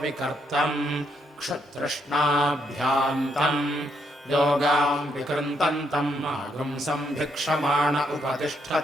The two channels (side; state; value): both; normal; correlation 0.75